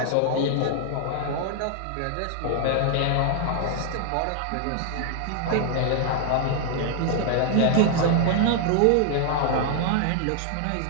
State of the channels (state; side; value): different; both; correlation 0.00